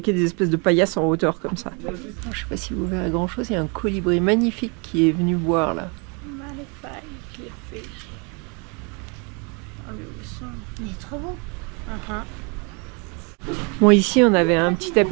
des espèces de paillasses en hauteur comme ça. Je sais pas si vous verrez grand chose, il y a un colibri magnifique qui est venu boire là. Il est trop beau. Bon, ici on avait un petit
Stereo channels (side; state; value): left; quieter; 32.9 dB